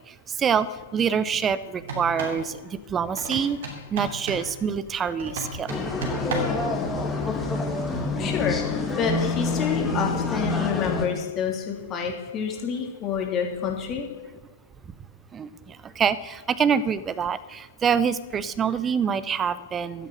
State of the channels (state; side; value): normal; both; correlation 0.45